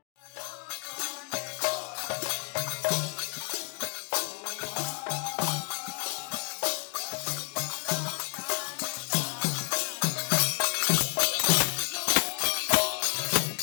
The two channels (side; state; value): right; quieter; 37.2 dB